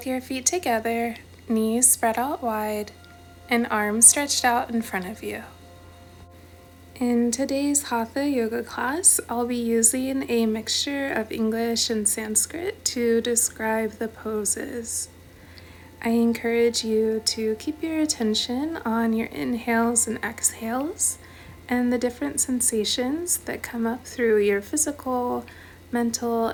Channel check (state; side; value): identical; both; correlation 1.00